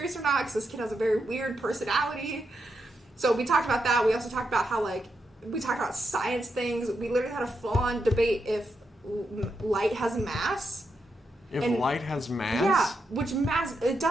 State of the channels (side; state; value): both; normal; correlation 0.84